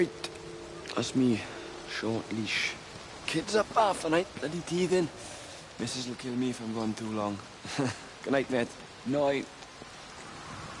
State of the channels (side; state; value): both; identical; correlation 1.00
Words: That's me. Short leash. Kids up half the night, bloody teething. Missus will kill me if I'm gone too long. Good night, mate. Night.